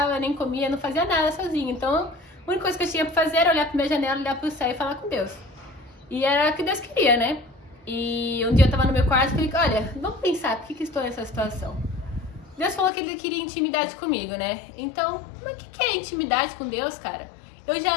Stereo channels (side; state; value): right; drops out; at 12.9 s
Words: nem comia, não fazia nada sozinha. Então, a única coisa que eu tinha pra fazer era olhar pra minha janela, olhar pro céu e falar com Deus. E era o que Deus queria, né? E um dia eu tava no meu quarto e falei, olha, vamos pensar, por que estou nessa situação? Deus falou que Ele queria intimidade comigo, né? Então, mas o que é intimidade com Deus, cara? Eu já